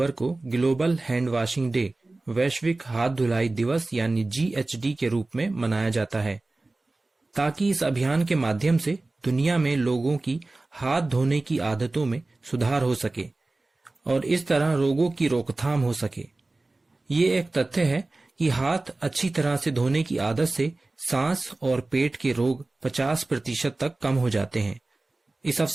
को ग्लोबल हैंड वॉशिंग डे वैश्विक हाथ धुलाई दिवस यानी GHD के रूप में मनाया जाता है, ताकि इस अभियान के माध्यम से दुनिया में लोगों की हाथ धोने की आदतों में सुधार हो सके और इस तरह रोगों की रोकथाम हो सके। ये एक तथ्य है कि हाथ अच्छी तरह से धोने की आदत से सांस और पेट के रोग 50% तक कम हो जाते हैं। इस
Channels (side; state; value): left; quieter; 3.1 dB